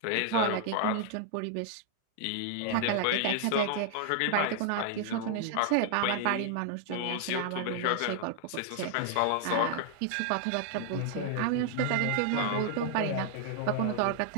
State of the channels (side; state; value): both; different; correlation 0.00